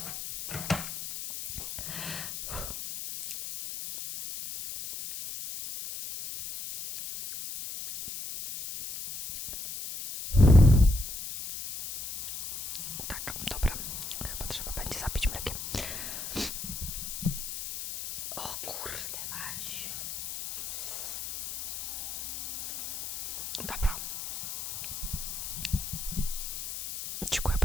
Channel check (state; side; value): noise; left; hiss, 7 dB below the sound